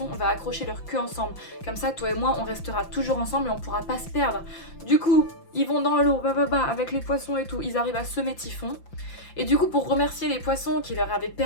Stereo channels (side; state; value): right; late; 5.8 ms